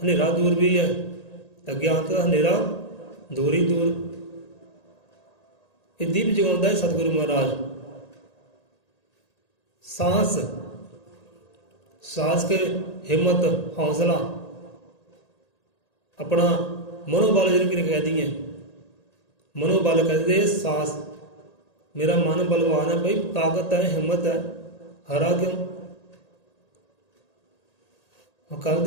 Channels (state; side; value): late; right; 1.8 ms